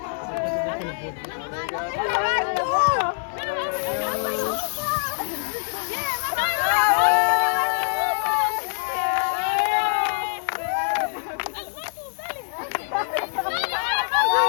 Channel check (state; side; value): silent; right; digital silence